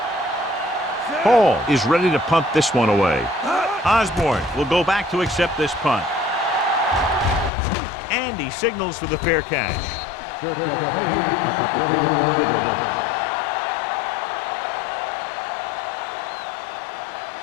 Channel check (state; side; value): drops out; right; at 7.5 s